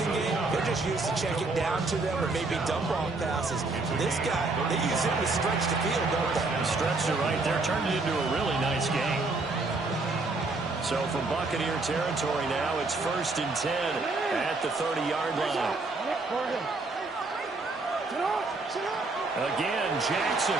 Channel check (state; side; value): quieter; left; 3.5 dB